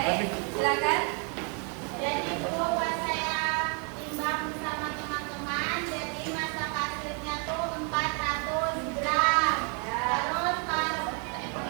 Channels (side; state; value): left; quieter; 37.7 dB